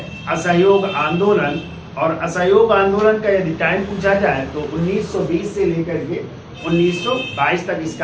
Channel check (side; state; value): both; identical; correlation 1.00